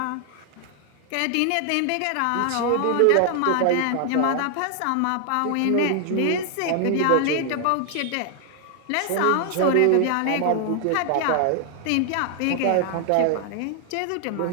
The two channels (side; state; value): both; different; correlation 0.00